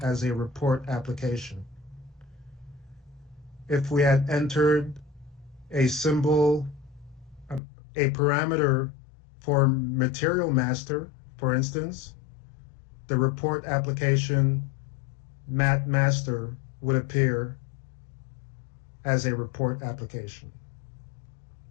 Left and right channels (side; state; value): right; drops out; at 7.6 s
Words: as a report application. If we had entered a symbol, a parameter for material master, for instance, the report application mat master would appear as a report application.